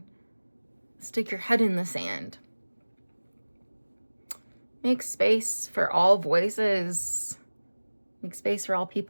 stick your head in the sand. Make space for all voices. Make space for all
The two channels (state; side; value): inverted; both; correlation -1.00